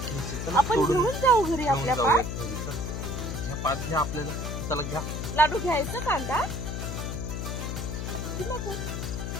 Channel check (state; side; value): noise; left; hum, 4 dB below the sound